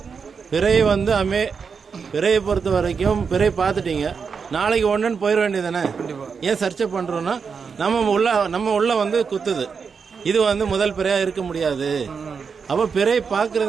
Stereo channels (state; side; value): quieter; left; 5.8 dB